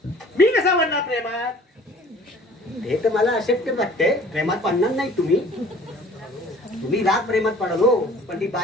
मी कसा म्हणणार प्रेमात? हे तर मला अशक्य वाटते. प्रेमात पडणार नाही तुम्ही. तुम्ही राग प्रेमात पडाल हो, पण ती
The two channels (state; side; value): normal; both; correlation 0.50